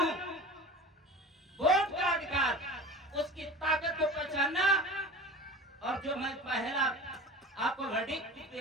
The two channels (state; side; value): normal; both; correlation 0.35